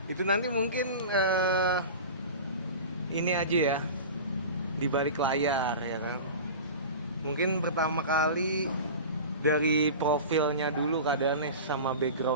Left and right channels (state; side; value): inverted; both; correlation -0.33